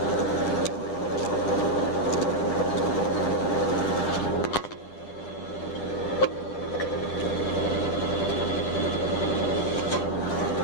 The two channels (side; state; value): right; late; 9.8 ms